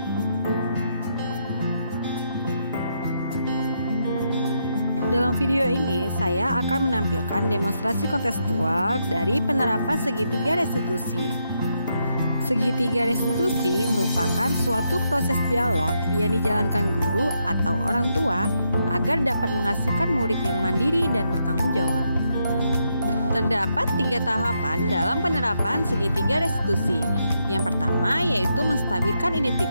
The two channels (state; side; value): inverted; both; correlation -0.80